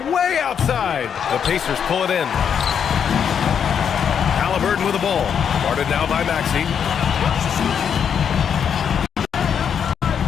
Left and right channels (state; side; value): quieter; right; 7.7 dB